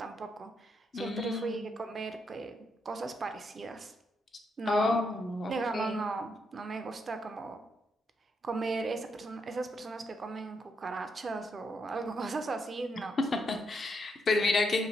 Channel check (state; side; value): normal; both; correlation 0.79